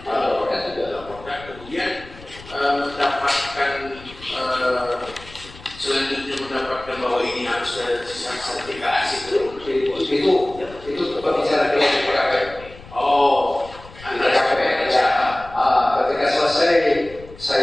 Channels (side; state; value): left; noise; rumble, 19 dB below the sound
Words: laporkan juga. Laporkan, kemudian mendapatkan selanjutnya mendapatkan bahwa ini harus ada sertifikasi itu pembicaraan dengan TKP. Oh, Di TKP ya. Ketika selesai